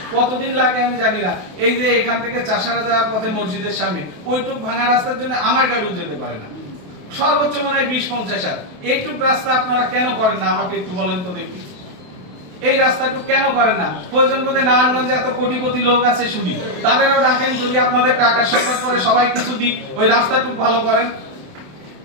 কতদিন লাগে আমি জানি না। এই যে এখান থেকে চাষারা যাওয়ার পথে মসজিদের সামনে ওইটুক ভাঙা রাস্তার জন্য আমার গাড়িও যেতে পারে না, সর্বোচ্চ মনে হয় 20-50 হাজার। এইটুক রাস্তা আপনারা কেন করেন না আমাকে একটু বলেন তো দেখি। এই রাস্তাটুকু কেন করেন না? প্রয়োজন বোধে নারায়ণগঞ্জে এত কোটি কোটি লোক আছে শুনি, তাদেরও ডাকেন, যদি আপনাদের টাকার সংকট পরে সবাই কিছু দিক, ওই রাস্তাটুকু ভালো করেন।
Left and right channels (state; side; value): late; left; 27 ms